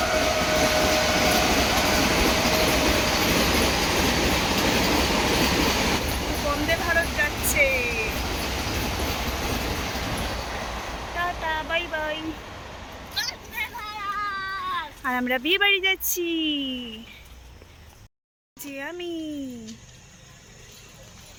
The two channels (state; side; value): identical; both; correlation 1.00